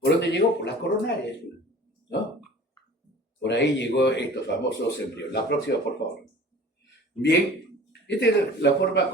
dónde llegó? Por las coronarias, ¿no? Por ahí llegó estos famosos embriones. La próxima, por favor. Bien, esta es la forma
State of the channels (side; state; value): both; normal; correlation 0.45